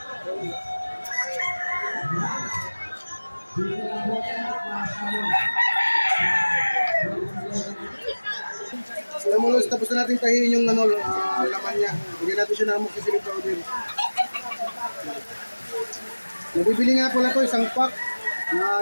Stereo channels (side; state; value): both; inverted; correlation -1.00